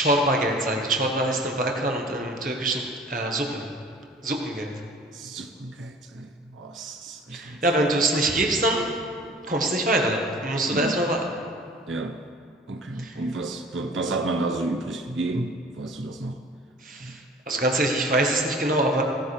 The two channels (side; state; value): both; normal; correlation 0.47